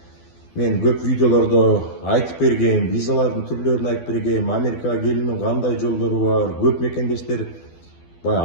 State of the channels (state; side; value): late; right; 12 ms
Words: мен көп видеолордо айтып бергем, визалардын түрлөрүн айтып бергем, Америкага келүүнүн кандай жолдору бар. Көп мекендештер